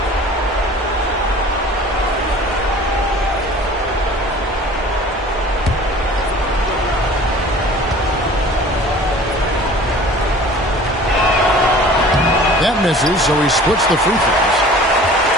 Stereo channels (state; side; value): normal; both; correlation 0.45